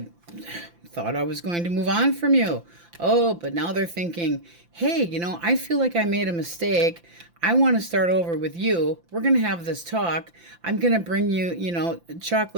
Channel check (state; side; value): late; left; 5.8 ms